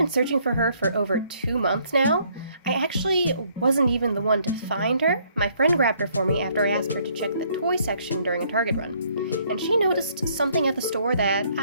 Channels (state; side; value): inverted; both; correlation -0.66